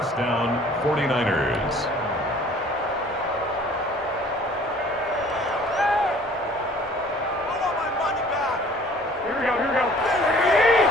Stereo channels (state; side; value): normal; both; correlation 0.52